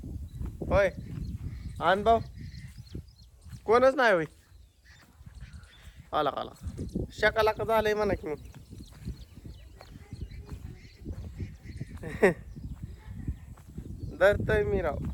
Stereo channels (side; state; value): both; identical; correlation 1.00